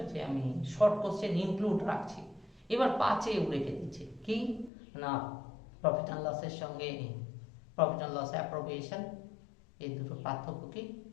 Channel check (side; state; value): right; drops out; at 4.7 s